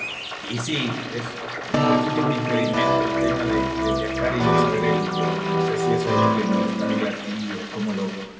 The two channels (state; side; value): identical; both; correlation 1.00